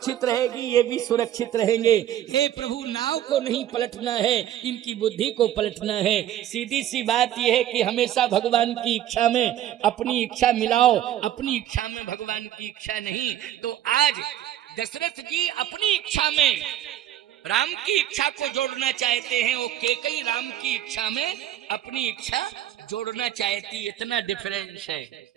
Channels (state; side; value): quieter; left; 11.9 dB